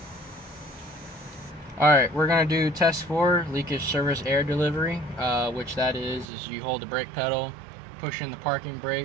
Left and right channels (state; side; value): drops out; left; at 6.2 s